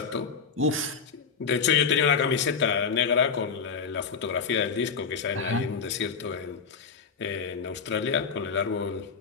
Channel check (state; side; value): quieter; right; 5.9 dB